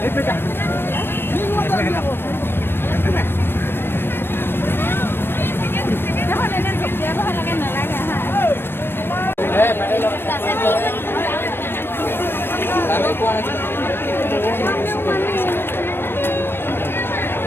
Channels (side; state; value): right; late; 0.10 ms